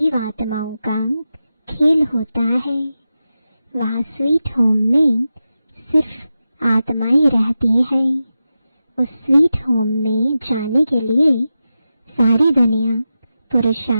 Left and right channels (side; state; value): both; inverted; correlation -0.91